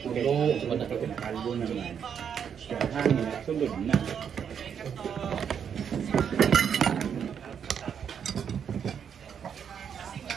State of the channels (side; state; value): left; quieter; 7.8 dB